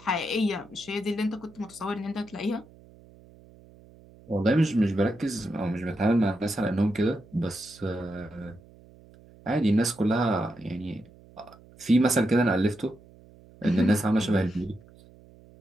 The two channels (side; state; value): right; noise; hum, 24 dB below the sound